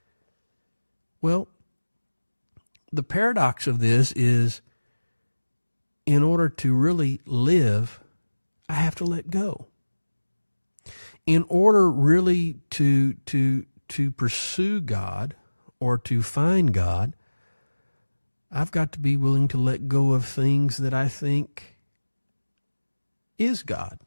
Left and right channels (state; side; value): inverted; both; correlation -1.00